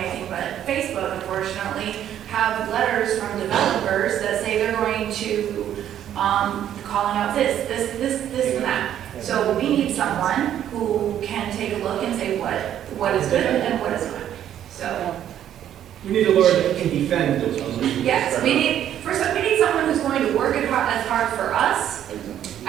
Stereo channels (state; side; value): quieter; left; 10.7 dB